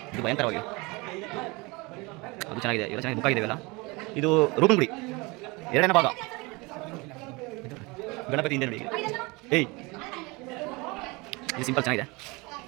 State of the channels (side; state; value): left; quieter; 25.5 dB